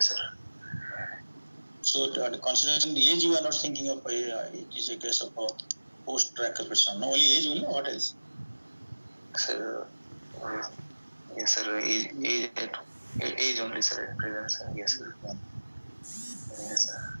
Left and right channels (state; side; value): inverted; both; correlation -1.00